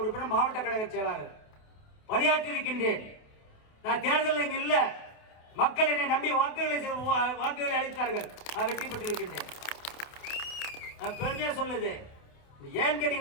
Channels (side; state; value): right; late; 28 ms